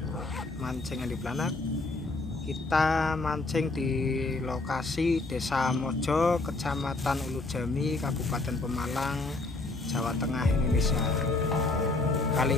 mancing Andi Planak, kita mancing di lokasi Desa Mojo, Kecamatan Ulujami, Kabupaten Pemalang, Jawa Tengah, Indonesia. Kali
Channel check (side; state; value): right; quieter; 3.2 dB